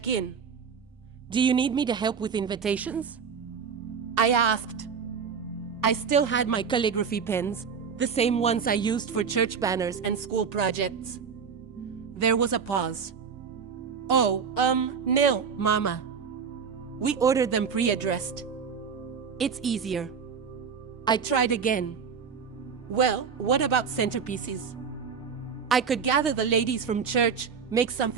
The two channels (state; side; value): quieter; left; 6.3 dB